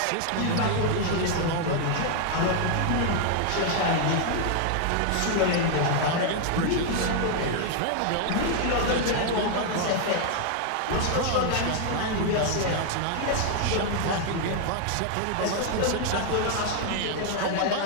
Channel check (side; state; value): both; different; correlation 0.00